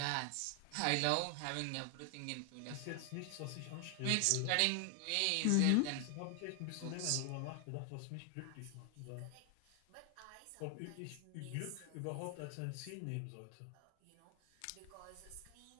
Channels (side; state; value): both; different; correlation 0.00